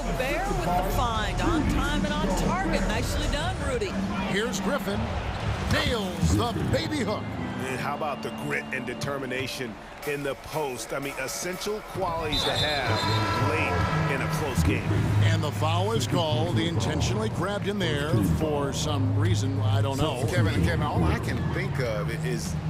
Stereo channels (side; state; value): both; identical; correlation 1.00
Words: with the find? On time and on target. Nicely done, Rudy. Here's Griffin. Nails the baby hook. And how about the grit and determination in the post? I mean, essential qualities to have late in a close game. And the foul is called. He intentionally grabbed in there for some reason. I don't know. Kevin, all I can think of is